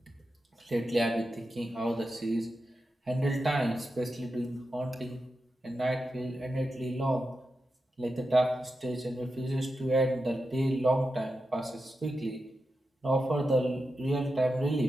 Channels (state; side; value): normal; both; correlation 0.89